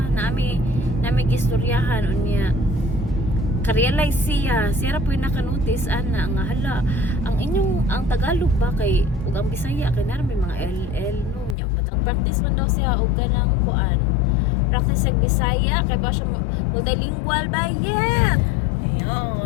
nami gistoryahan unya. Ka-realize siya ra po yung nakanotice ana nga hala ang Tagalog ba kay ug ang Bisaya kay na may mga LL no nya matag practice man daw siya og ganang kuan practice sa Bisaya kay ba siya multilingual ba yet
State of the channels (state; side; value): drops out; right; at 11.6 s